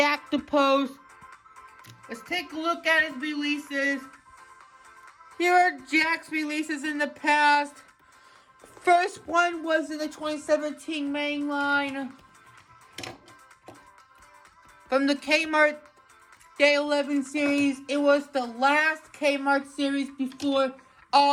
DePost. Let's take a look at his releases. Here are Jack's releases in the past. First one was in the 2017 main line. From the Kmart Day 11 series, it was the last Kmart series before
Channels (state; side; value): identical; both; correlation 1.00